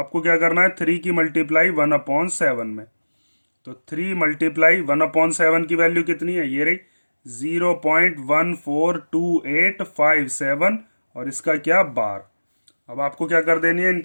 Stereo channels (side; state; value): both; inverted; correlation -1.00